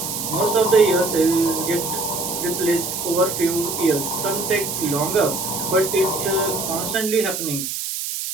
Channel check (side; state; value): right; noise; hiss, 4 dB below the sound